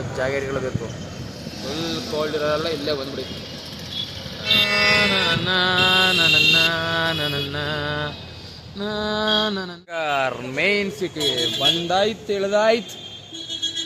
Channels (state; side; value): identical; both; correlation 1.00